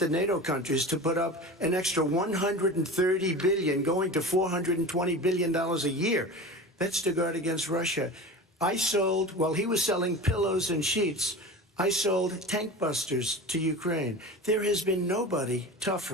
NATO countries to put up an extra $130 billion, going to $420 billion a year. That's to guard against Russia. I sold, while he was selling pillows and sheets, I sold tank busters to Ukraine. There has been nobody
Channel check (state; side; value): normal; both; correlation 0.32